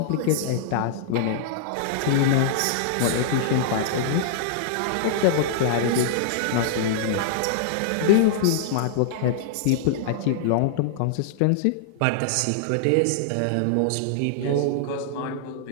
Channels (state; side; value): different; both; correlation -0.01